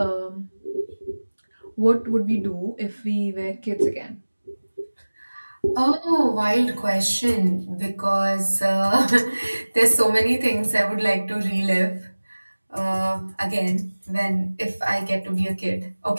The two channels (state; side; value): inverted; both; correlation -1.00